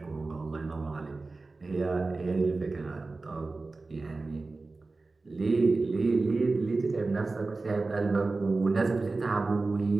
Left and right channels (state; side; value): quieter; left; 3.6 dB